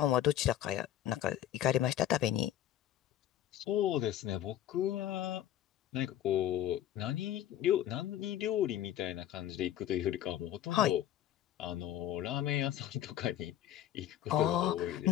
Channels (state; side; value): quieter; right; 11.8 dB